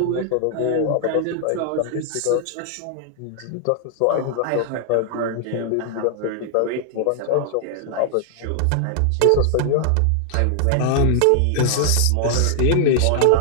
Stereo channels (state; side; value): different; both; correlation -0.01